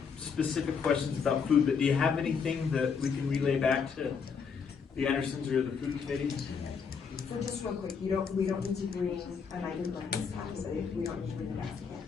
specific questions about food, but do you have anything that we can relay back to the Andersons or the food committee? So just real quick, we don't need to bring an item breakfast tax, we don't need to bring a basket.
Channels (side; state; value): right; quieter; 6.0 dB